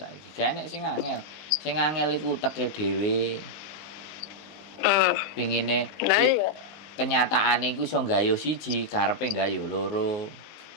Gak enek sing angel. Sing angel iku uteke dhewe. Pingine kenyataane iku iso gayuh siji, karepe gayuh loro.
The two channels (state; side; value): late; right; 19 ms